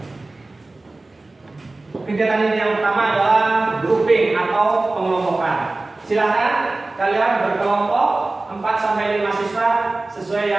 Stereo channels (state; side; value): quieter; left; 3.1 dB